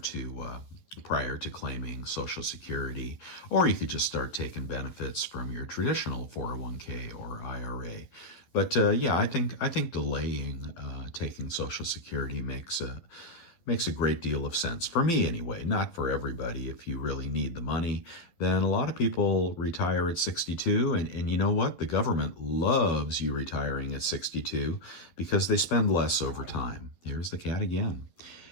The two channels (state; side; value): late; right; 12 ms